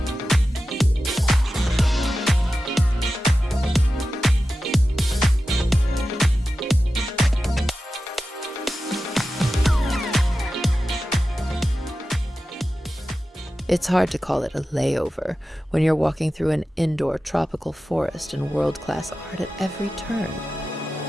It's hard to call it a layover when you're walking through an indoor tropical forest and world-class art at every turn.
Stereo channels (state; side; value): normal; both; correlation 0.93